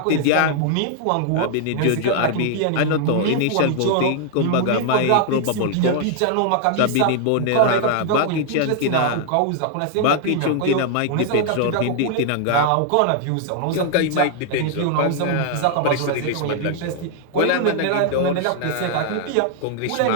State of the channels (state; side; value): different; both; correlation 0.00